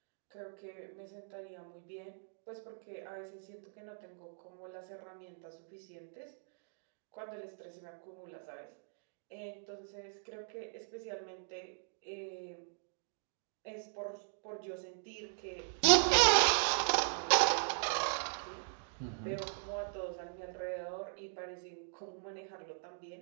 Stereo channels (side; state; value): left; silent; digital silence